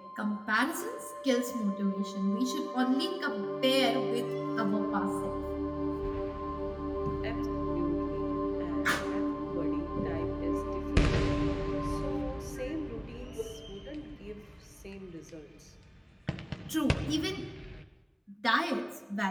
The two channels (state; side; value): identical; both; correlation 1.00